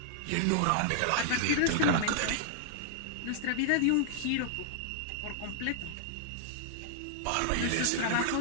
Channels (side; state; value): both; different; correlation -0.01